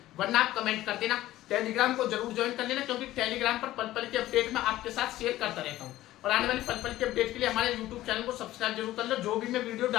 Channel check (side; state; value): right; quieter; 15.2 dB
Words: वरना आप कमेंट कर देना। टेलीग्राम को जरूर ज्वाइन कर लेना, क्योंकि टेलीग्राम पर पल पल के अपडेट मैं आपके साथ शेयर करता रहता हूँ। और आने वाली पल पल के अपडेट के लिए हमारे यूट्यूब चैनल को सब्सक्राइब जरूर कर लो। जो भी मैं वीडियो